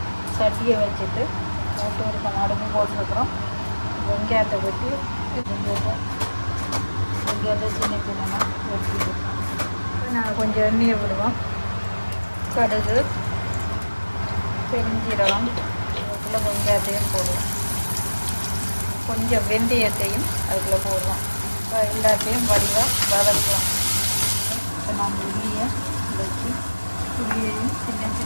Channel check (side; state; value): both; inverted; correlation -1.00